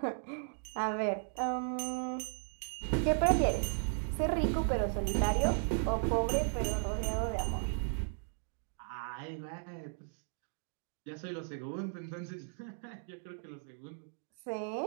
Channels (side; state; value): left; silent; digital silence